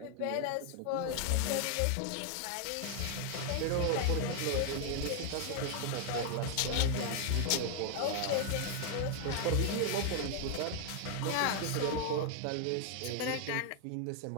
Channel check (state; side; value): different; both; correlation 0.00